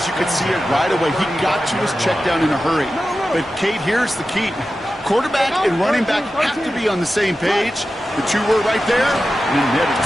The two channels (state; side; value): normal; both; correlation 0.93